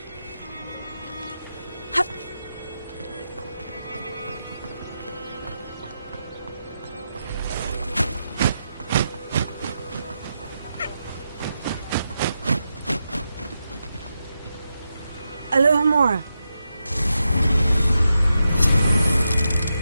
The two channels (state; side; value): inverted; both; correlation -0.87